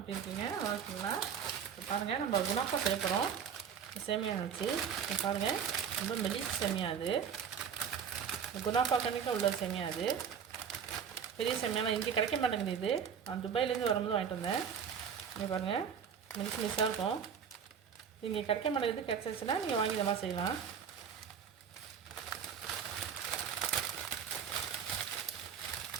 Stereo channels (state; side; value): quieter; left; 7.5 dB